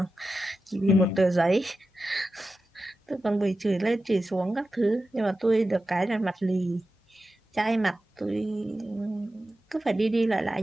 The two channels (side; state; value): both; normal; correlation 0.92